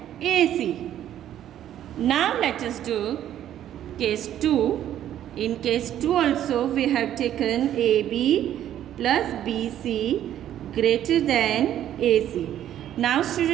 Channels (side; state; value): left; quieter; 11.3 dB